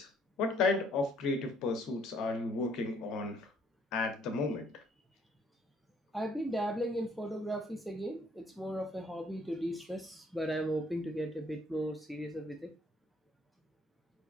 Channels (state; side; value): normal; both; correlation 0.64